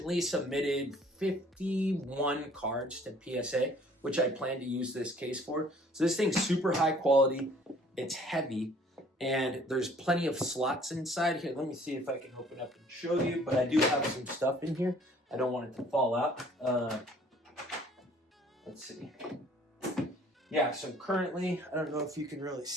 submitted 51 cards to PSA, which I plan to use this case for. So this thing's super high quality, it's heavy, and there's plenty of slots inside here. Let me see if I can open up and show you, but I do have some stuff in here. I don't want it to fall out. Let's see. Yeah, so currently, I don't know if you can really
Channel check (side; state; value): both; normal; correlation 0.56